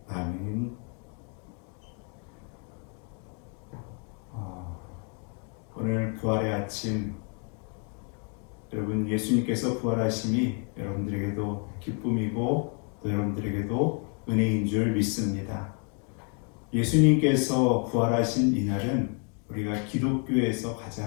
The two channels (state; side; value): quieter; right; 39.8 dB